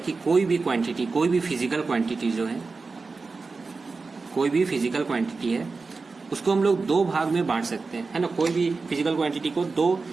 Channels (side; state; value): left; quieter; 4.1 dB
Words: कोई भी क्वांटिटी, कोई भी फिजिकल क्वांटिटी जो है, कोई भी फिजिकल क्वांटिटी है, उसको हम लोग दो भाग में बांट सकते हैं, है ना। कोई भी फिजिकल क्वांटिटी को दो